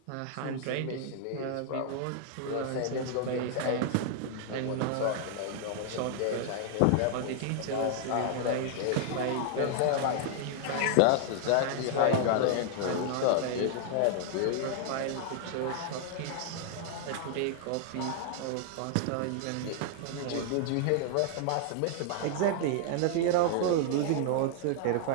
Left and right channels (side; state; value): both; different; correlation -0.01